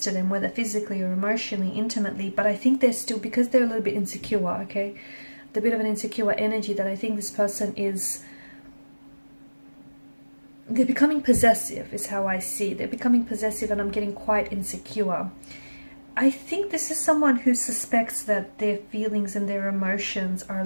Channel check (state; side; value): inverted; both; correlation -1.00